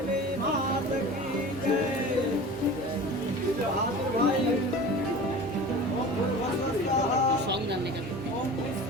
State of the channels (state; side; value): normal; both; correlation 0.37